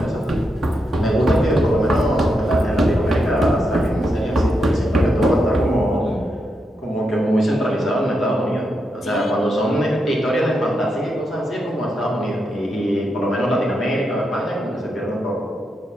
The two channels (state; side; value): normal; both; correlation 0.84